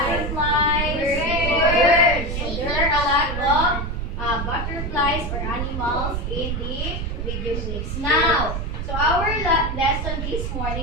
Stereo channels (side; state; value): right; noise; rumble, 3 dB below the sound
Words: Birds. So there are a lot of butterflies or animals in the video clips. Now, so our lesson this